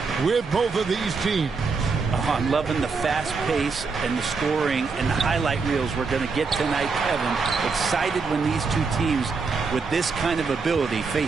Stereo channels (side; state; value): left; quieter; 4.7 dB